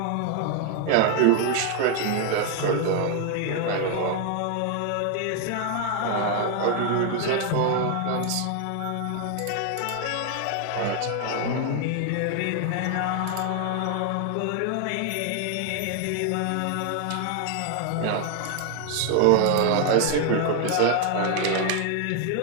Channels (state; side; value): different; both; correlation 0.00